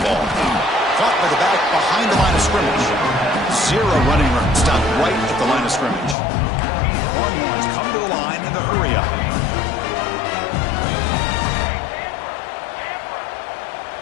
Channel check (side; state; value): right; drops out; at 6.2 s